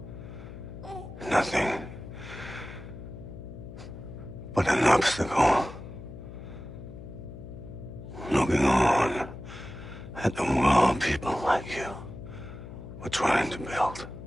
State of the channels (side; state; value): left; noise; hum, 13 dB below the sound